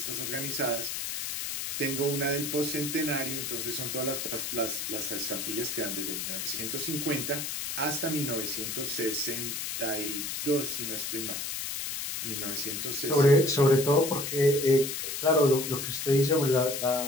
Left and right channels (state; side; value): noise; left; hiss, 4 dB below the sound